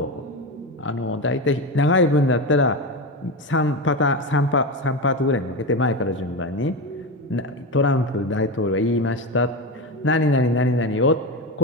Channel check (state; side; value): normal; both; correlation 0.18